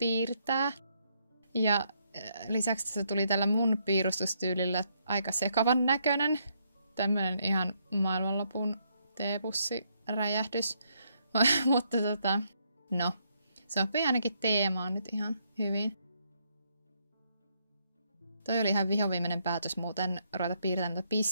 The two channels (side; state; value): both; inverted; correlation -0.74